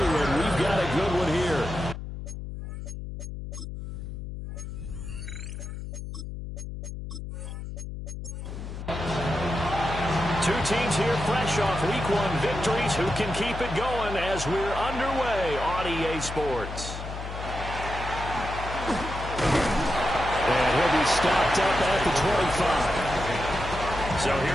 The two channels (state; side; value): noise; left; hum, 8 dB below the sound